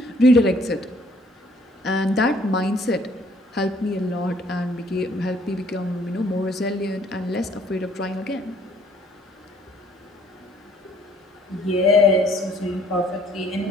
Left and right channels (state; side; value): normal; both; correlation 0.61